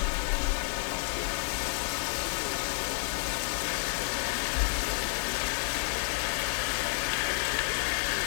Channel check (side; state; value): right; silent; digital silence